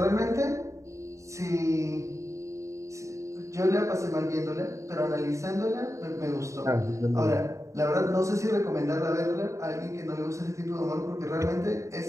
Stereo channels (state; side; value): late; left; 0.15 ms